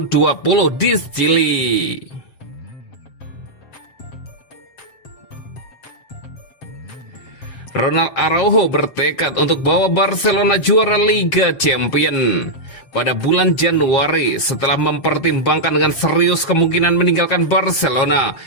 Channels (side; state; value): right; late; 7.4 ms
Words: di Chili. Ronald Araujo bertekad untuk bawa Barcelona juara Liga Champions. Pada bulan Januari, setelah mempertimbangkan dengan serius kemungkinan meninggalkan Barcelona,